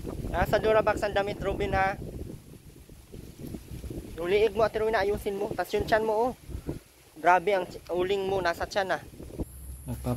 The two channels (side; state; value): both; identical; correlation 1.00